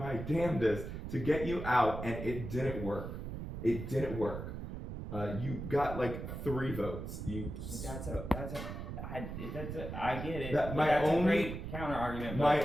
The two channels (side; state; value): right; noise; rumble, 7 dB below the sound